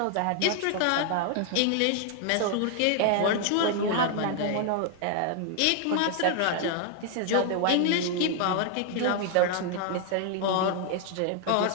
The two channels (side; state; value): both; different; correlation 0.00